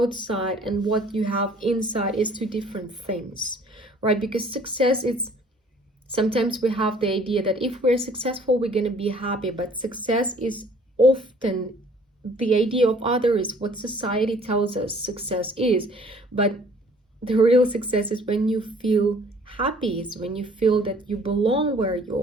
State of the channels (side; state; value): both; normal; correlation 0.55